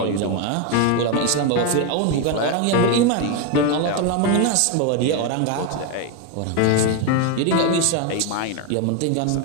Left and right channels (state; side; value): different; both; correlation 0.02